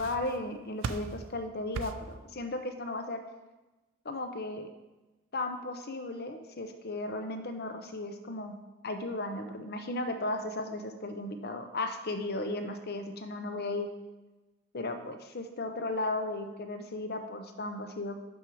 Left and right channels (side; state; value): both; normal; correlation -0.09